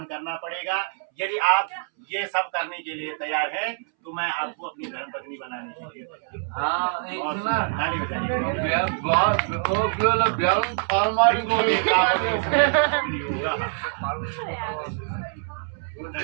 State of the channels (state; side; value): silent; left; 62 dB below the other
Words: करना पड़ेगा यदि आप ये सब करने के लिए तैयार हैं तो मैं आपको अपनी धर्म पत्नी बनाने के लिए तैयार